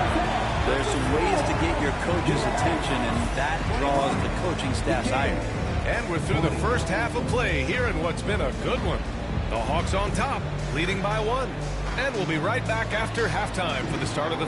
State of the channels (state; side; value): identical; both; correlation 1.00